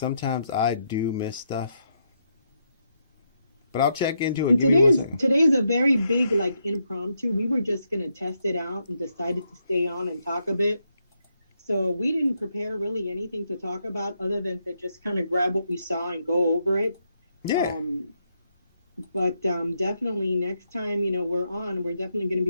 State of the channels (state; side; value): inverted; both; correlation -0.79